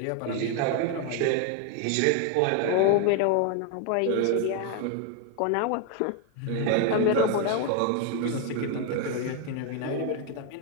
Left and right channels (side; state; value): both; different; correlation 0.01